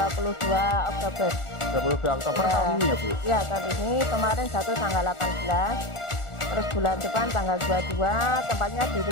Oktober. 22 Oktober tahun ini ya Bu? Ya, tahun ini kemarin jatuh tanggal 18. Terus bulan depan tanggal 22, tempatnya di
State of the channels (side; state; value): right; late; 1.4 ms